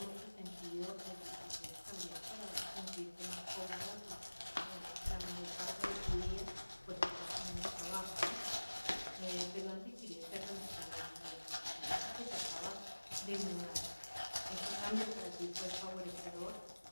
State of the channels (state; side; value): inverted; both; correlation -1.00